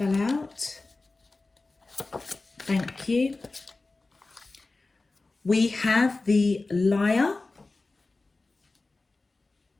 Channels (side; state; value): right; quieter; 3.4 dB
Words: out. Thank you. We have the Liar.